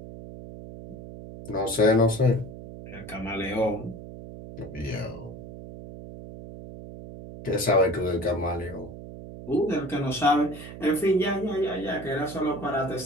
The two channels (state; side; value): noise; right; hum, 13 dB below the sound